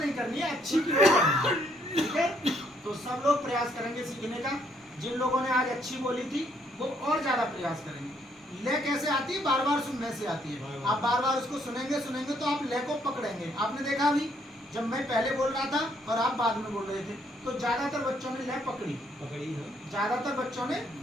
नहीं करनी है, अच्छी की ओर करनी है, ठीक है। तो सब लोग प्रयास करेंगे सीखने का। जिन लोगों ने आज अच्छी बोली थी वो और ज्यादा प्रयास करेंगे। लय कैसे आती है, बार बार सुनने से आती है। आप बार बार उसको सुनेंगे तो आप लय को पकड़ेंगे। आपने देखा अभी जब मैं पहले बोल रहा था और आप बाद में बोल रहे थे, तो ज्यादातर बच्चों ने लय पकड़ी है, ज्यादातर बच्चों ने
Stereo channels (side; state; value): both; normal; correlation 0.69